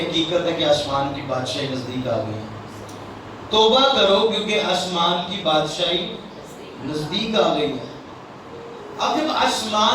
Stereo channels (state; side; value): identical; both; correlation 1.00